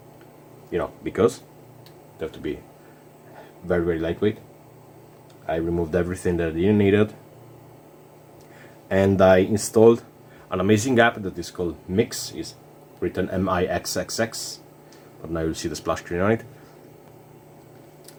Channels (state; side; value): identical; both; correlation 1.00